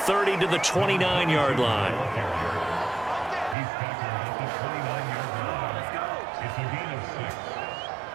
to the 29-yard line. He's tackled at the 29-yard line. It's a gain of 6.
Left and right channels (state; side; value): drops out; left; at 3.6 s